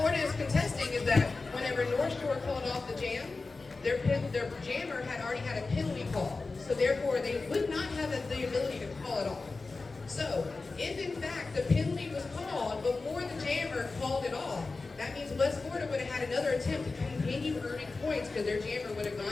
is contesting is that whenever North Shore called off the jam, their jammer had already had a penalty call. So therefore, they would not have the ability to call it off. So, if in fact the penalty was called before the jammer called it off, that means West Florida would have had another attempt to continue earning points because their jammer would have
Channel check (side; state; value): right; quieter; 3.8 dB